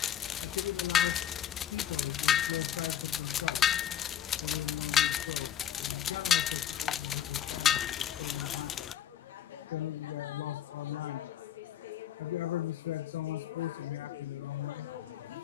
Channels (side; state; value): right; quieter; 10.0 dB